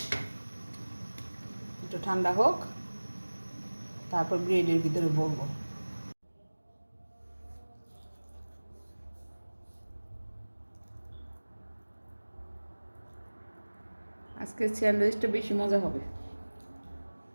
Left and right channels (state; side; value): inverted; both; correlation -1.00